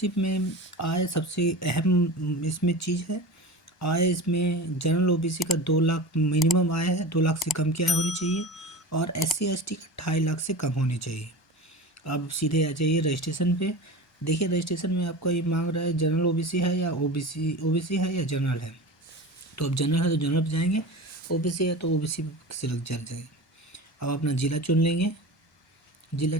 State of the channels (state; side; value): normal; both; correlation 0.31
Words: में आय सबसे अहम इसमें चीज़ है। आय इसमें जनरल ओबीसी का 2 लाख मिनिमम आय है, 2 लाख से कम की आय होनी चाहिए और एससी एसटी का 2.5 लाख से कम होनी चाहिए। अब सीधे आ जाइए रजिस्ट्रेशन पे। देखिए रजिस्ट्रेशन में आपका ये मांग रहा है जनरल ओबीसी है या ओबीसी है या जनरल है। तो अब जनरल है तो जनरल पे जाएंगे, ओबीसी है तो ओबीसी सिलेक्ट कर जाएंगे। अब अपना ज़िला चुन लेंगे। ज़िला